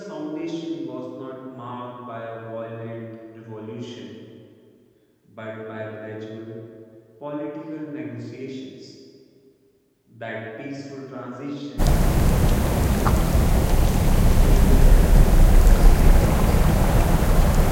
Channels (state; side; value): identical; both; correlation 1.00